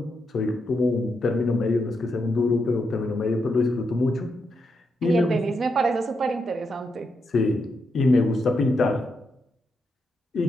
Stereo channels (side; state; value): both; normal; correlation 0.83